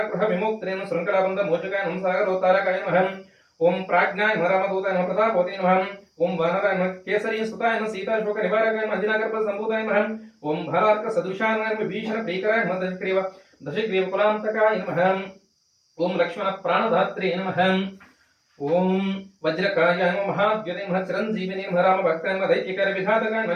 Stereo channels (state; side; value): identical; both; correlation 1.00